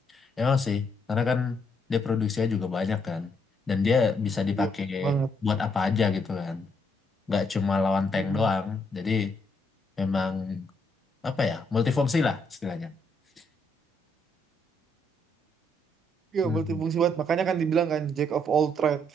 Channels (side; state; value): both; normal; correlation 0.73